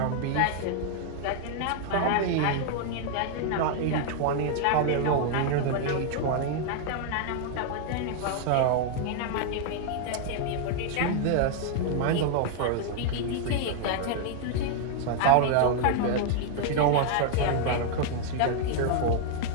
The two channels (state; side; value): different; both; correlation 0.00